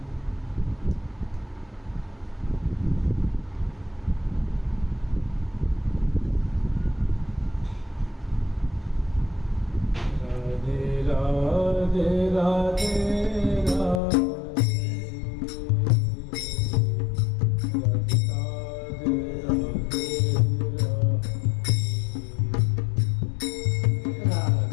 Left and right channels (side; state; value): right; drops out; at 14.0 s